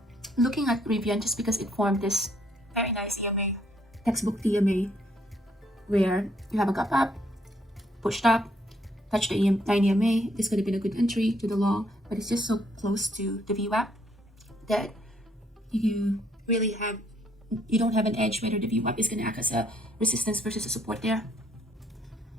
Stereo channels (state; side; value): normal; both; correlation 0.69